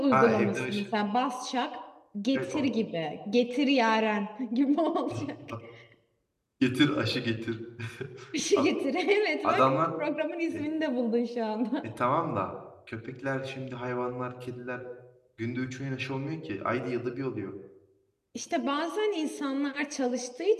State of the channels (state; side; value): identical; both; correlation 1.00